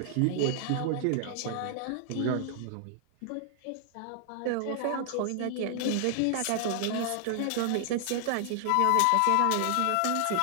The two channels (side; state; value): both; different; correlation 0.00